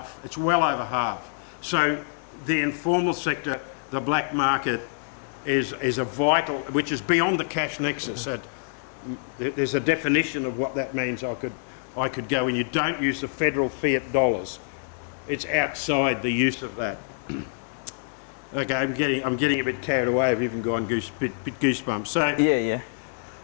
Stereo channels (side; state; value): right; silent; digital silence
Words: It's well over half. So the informal sector, the black market, is a vital, which is beyond the cash nexus. There's a definition of what that means. I could go, and you don't use the federal fiat dollars. It's outside the use of that. Okay, I'm getting a bit carried away. I've even gone bit goosebumps. So Yeah.